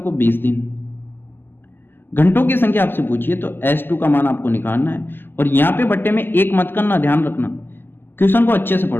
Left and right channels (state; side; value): late; right; 0.097 ms